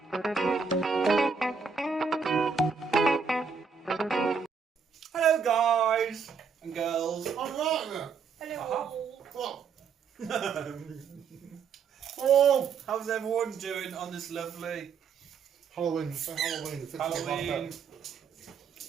guys and girls. I'm right Hello. What? Oh, how's everyone doing on this lovely Halloween. It's Halloween. It's Halloween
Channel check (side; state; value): left; quieter; 5.8 dB